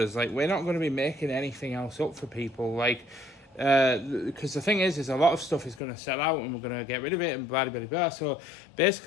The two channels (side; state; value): right; drops out; at 5.8 s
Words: Like, we're not going to be making anything else up for people, like, because the thing is a lot of stuff is going to sell out and we're going to get rid of it and blah blah blah. So